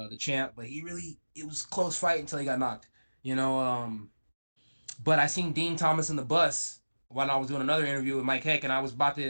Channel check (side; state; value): both; inverted; correlation -1.00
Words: the champ, but it was a close fight until he got knocked. But I seen Dean Thomas in the bus when I was doing another interview with Mike Heck, and I was about